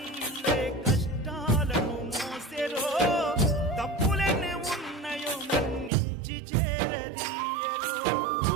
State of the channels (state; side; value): drops out; left; at 5.9 s